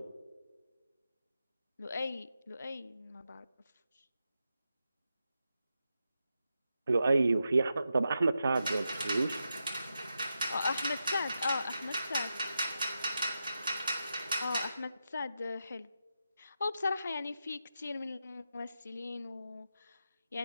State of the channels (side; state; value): both; inverted; correlation -0.87